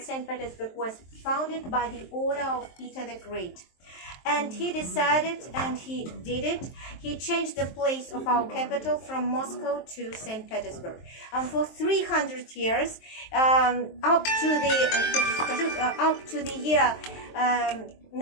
Petersburg was founded by the order of Peter the Great. And he decided, and he did it, he changed the place of our capital from Moscow to St. Petersburg. And for 300 years, up to the year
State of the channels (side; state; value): right; late; 23 ms